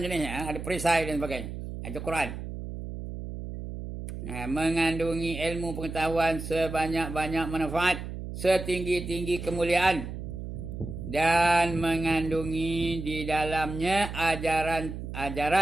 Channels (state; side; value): noise; right; hum, 8 dB below the sound